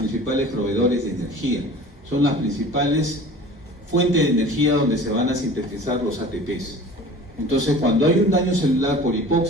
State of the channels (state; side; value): normal; both; correlation 0.42